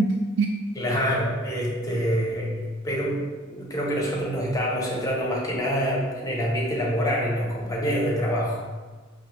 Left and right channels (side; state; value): both; normal; correlation 0.51